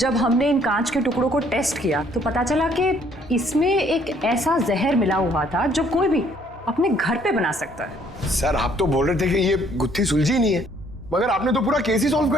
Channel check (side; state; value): both; normal; correlation 0.63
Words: हमने इन कांच के टुकड़ों को टेस्ट किया तो पता चला कि इसमें एक ऐसा जहर मिला हुआ था जो कोई भी अपने घर पे बना सकता है। सर, आप तो बोल रहे थे कि ये गुत्थी सुलझी नहीं है, मगर आपने तो पूरा केस ही सॉल्व